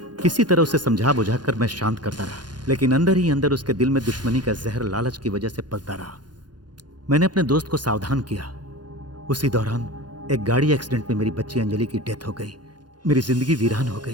किसी तरह उसे समझा बुझाकर मैं शांत करता रहा, लेकिन अंदर ही अंदर उसके दिल में दुश्मनी का जहर लालच की वजह से पलता रहा। मैंने अपने दोस्त को सावधान किया। उसी दौरान एक गाड़ी एक्सीडेंट में मेरी बच्ची अंजलि की डेथ हो गई। मेरी जिंदगी वीरान हो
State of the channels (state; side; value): late; left; 0.70 ms